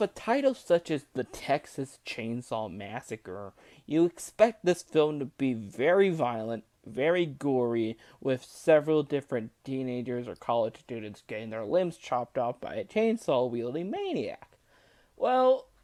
a title such as The Texas Chainsaw Massacre, you expect this film to be very violent, very gory, with several different teenagers or college students getting their limbs chopped off by a chainsaw-wielding maniac. Well,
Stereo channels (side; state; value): both; identical; correlation 1.00